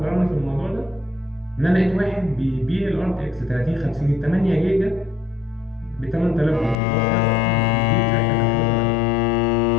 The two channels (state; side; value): drops out; right; at 6.8 s